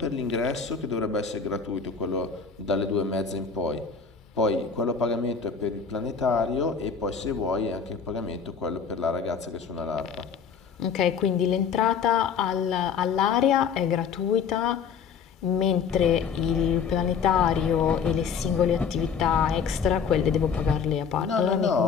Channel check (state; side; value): quieter; right; 6.3 dB